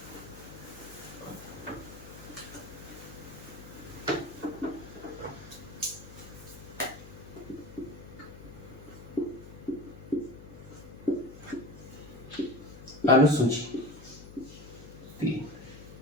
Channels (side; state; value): left; noise; hum, 15 dB below the sound